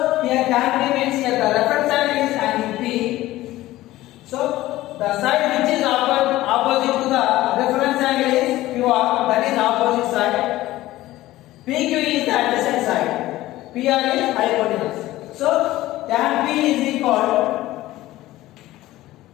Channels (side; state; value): right; quieter; 16.3 dB